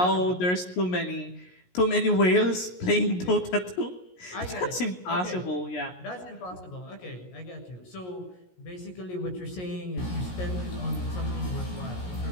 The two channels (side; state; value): right; late; 17 ms